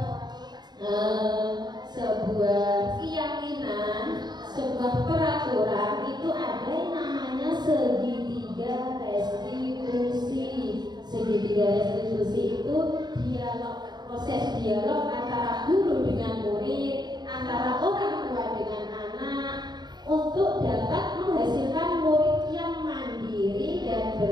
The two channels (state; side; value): late; left; 0.20 ms